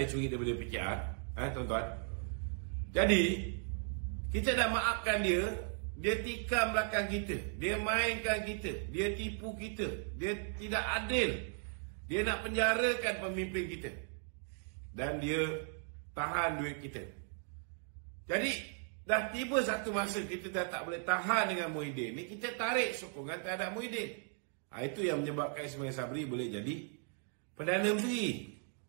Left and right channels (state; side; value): silent; left; 53 dB below the other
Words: curi daripada PKR. Tuan-tuan. Jadi kita dah maafkan dia. Dia tikam belakang kita, dia mainkan kita, dia tipu kita, dia tidak adil, dia nak penjarakan pemimpin kita, dan dia tahan duit kita. Jadi dah tiba satu masa kita dah tak boleh tahan dengan Muhyiddin ni, kita tarik sokongan terhadap Muhyiddin. Itu yang menyebabkan Ismail Sabri boleh jadi Perdana Menteri.